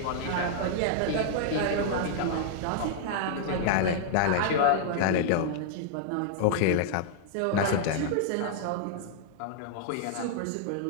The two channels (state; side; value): different; both; correlation -0.01